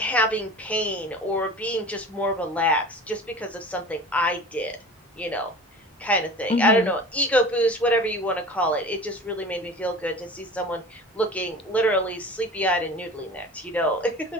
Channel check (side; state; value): both; normal; correlation 0.38